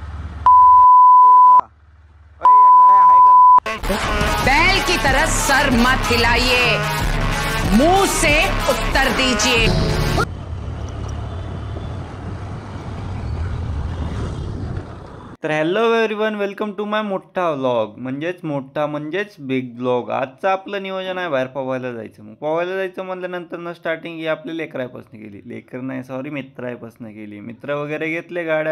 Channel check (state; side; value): identical; both; correlation 1.00